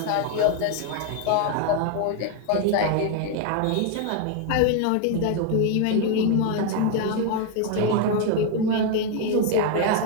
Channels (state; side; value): different; both; correlation 0.01